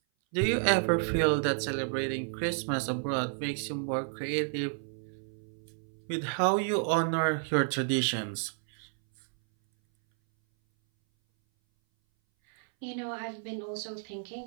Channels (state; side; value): silent; left; 57 dB below the other